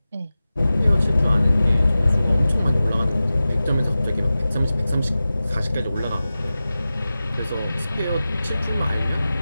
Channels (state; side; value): inverted; both; correlation -0.95